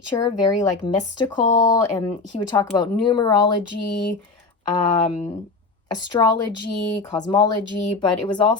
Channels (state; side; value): quieter; right; 3.9 dB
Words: very like mystical. And he would talk about numerology, astrology, cosmology, but it was